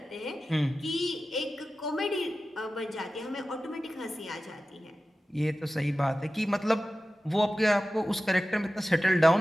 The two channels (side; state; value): both; normal; correlation 0.94